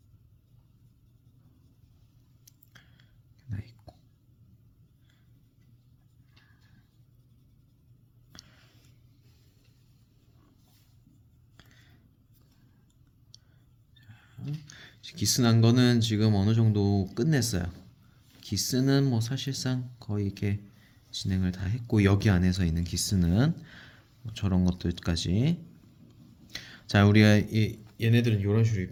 나 있고 기스 난 거는 지금 어느 정도 끝냈어요. 기스는 뭐 사실상 거의 이렇게 진행을 다 했고 여기 안에서 있는 기스는 뭐 저런 것들까지 자 우리가 얘네들은 이런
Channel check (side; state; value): both; identical; correlation 1.00